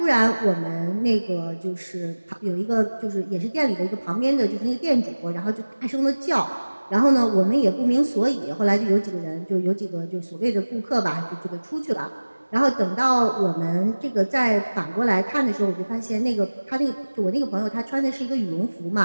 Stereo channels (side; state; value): both; inverted; correlation -1.00